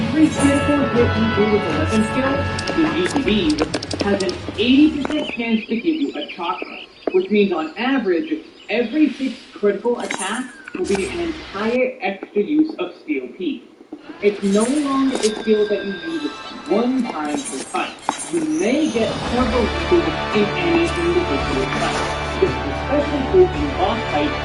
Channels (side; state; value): both; identical; correlation 1.00